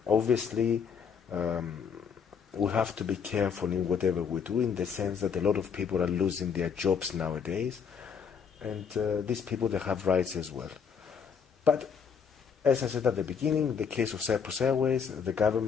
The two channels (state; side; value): quieter; right; 6.6 dB